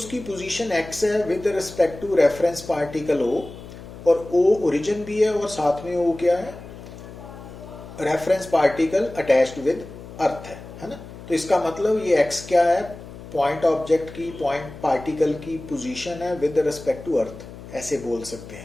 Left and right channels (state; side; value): noise; left; hum, 15 dB below the sound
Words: पोजीशन x है with respect to reference particle O, और O ओरिजिन भी है और साथ में O क्या है, reference particle attached with earth है ना। तो इसका मतलब ये x क्या है, पॉइंट ऑब्जेक्ट की, पॉइंट पार्टिकल की पोजीशन है विद रिस्पेक्ट टू अर्थ, ऐसे बोल सकते